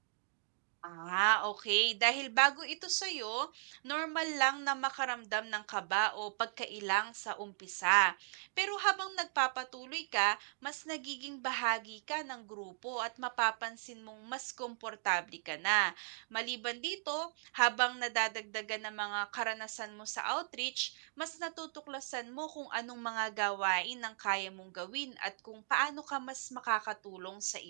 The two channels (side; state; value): left; silent; digital silence